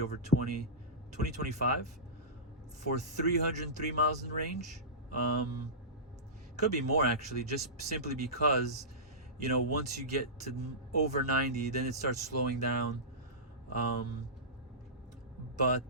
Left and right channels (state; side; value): normal; both; correlation -0.19